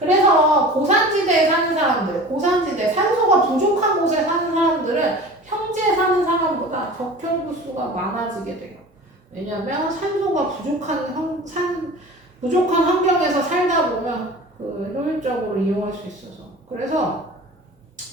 고산지대에 사는 사람들, 고산지대, 산소가 부족한 곳에 사는 사람들은 평지에 사는 사람보다 적혈구 수가 많아지게 돼요. 왜냐하면 산소가 부족한 환경에서 살다 보면 효율적으로 이용할 수 있어서. 그래서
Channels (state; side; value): normal; both; correlation 0.38